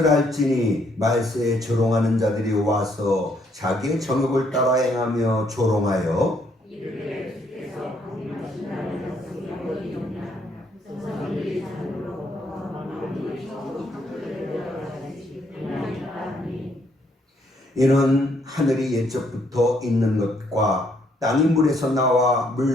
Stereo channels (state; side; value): normal; both; correlation 0.70